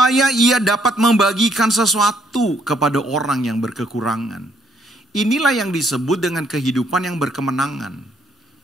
ia dapat membagikan sesuatu kepada orang yang berkekurangan. Inilah yang disebut dengan kehidupan yang berkemenangan.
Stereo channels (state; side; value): normal; both; correlation 0.69